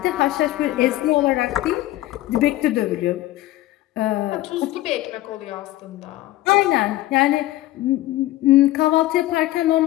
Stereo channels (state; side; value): quieter; right; 16.1 dB